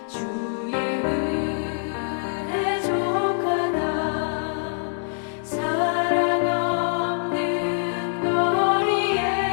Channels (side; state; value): right; silent; digital silence